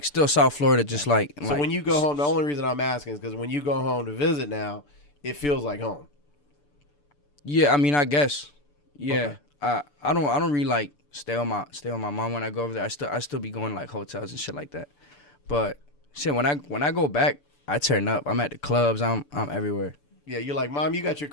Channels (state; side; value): late; right; 6.9 ms